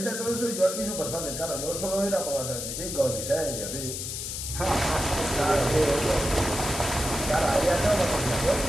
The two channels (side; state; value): left; noise; hiss, 5 dB below the sound